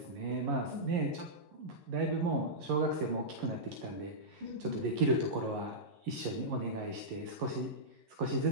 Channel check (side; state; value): left; late; 11 ms